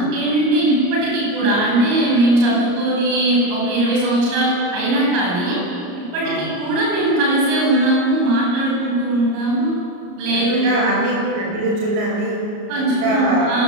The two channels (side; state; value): left; late; 34 ms